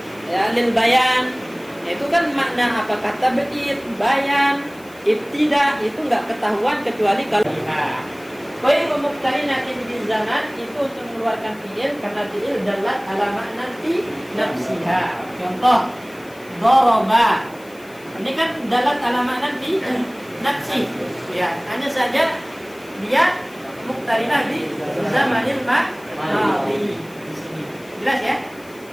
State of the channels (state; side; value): noise; left; hiss, 24 dB below the sound